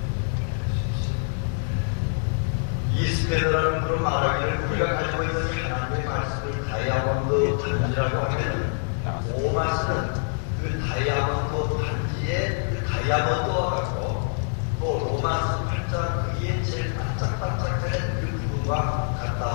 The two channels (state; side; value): silent; right; 61 dB below the other